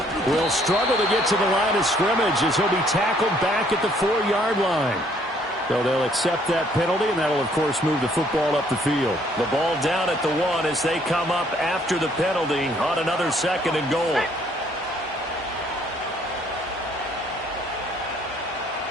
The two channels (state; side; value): normal; both; correlation 0.64